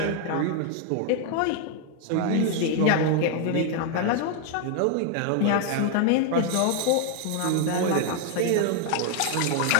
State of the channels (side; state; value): both; different; correlation 0.00